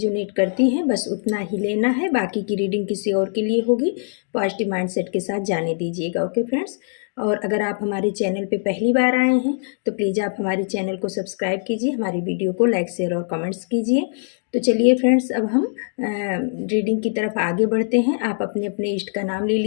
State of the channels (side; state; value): right; silent; 64 dB below the other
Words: करती हैं बस उतना ही लेना है, बाकी की रीडिंग किसी और के लिए होगी। पॉजिटिव माइंडसेट के साथ जाने दीजिएगा। Okay friends. और अगर आप हमारे चैनल पे पहली बार आए हैं तो प्लीज़ आप हमारे चैनल को सब्सक्राइब कीजिए, हमारी वीडियो को लाइक शेयर और कमेंट्स कीजिए। तो चलिए फ्रेंड्स, अब हम रीडिंग की तरफ आगे बढ़ते हैं। आप अपने अपने इष्ट का नाम ले